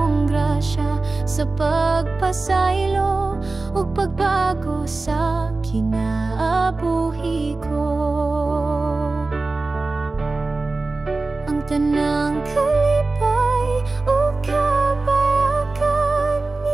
grasya sa pagpasaylo ug pagbago sa kinabuhi ko. Ang tanang kalipay o kabayakan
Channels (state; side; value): quieter; left; 3.4 dB